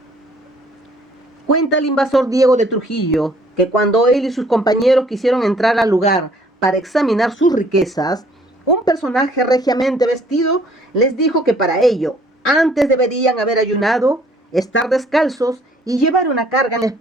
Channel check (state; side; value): normal; both; correlation 0.60